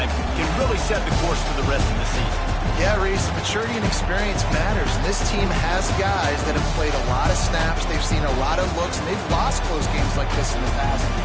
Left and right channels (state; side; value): identical; both; correlation 1.00